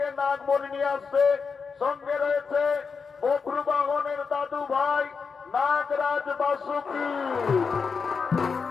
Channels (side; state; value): right; quieter; 5.4 dB